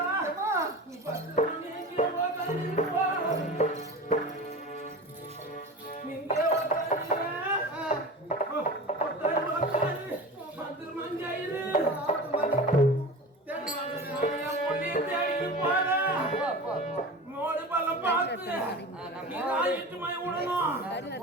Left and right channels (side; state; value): both; normal; correlation 0.32